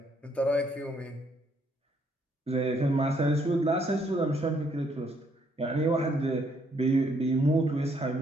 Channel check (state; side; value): normal; both; correlation 0.70